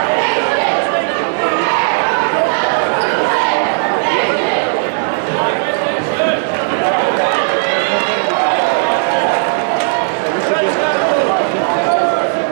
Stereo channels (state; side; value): silent; left; digital silence